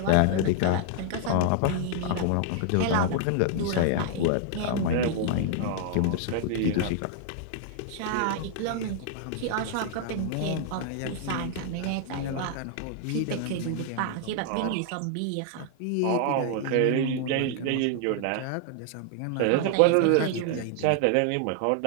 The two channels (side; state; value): both; different; correlation 0.00